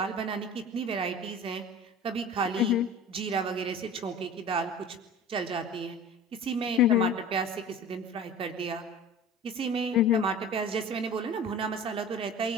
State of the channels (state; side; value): normal; both; correlation 0.39